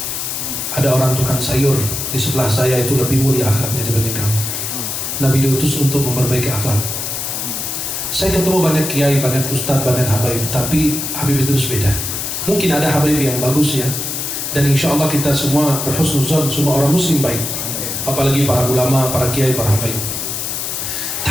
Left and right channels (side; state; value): left; noise; hiss, 3 dB below the sound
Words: Ada orang tukang sayur di sebelah saya itu lebih mulia akhlaknya dibanding kamu. Nabi diutus untuk memperbaiki akhlak. Saya ketemu banyak kiai, banyak ustadz, banyak habaib, tapi Habib Idrus beda. Mungkin ada habaib yang bagus ya, dan insya Allah kita semua berhusnuzon, semua orang muslim baik, apalagi para ulama, para kiai, para habaib.